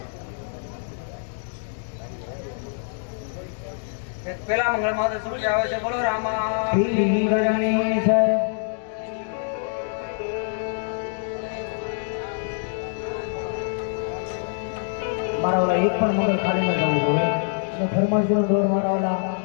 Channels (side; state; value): right; silent; digital silence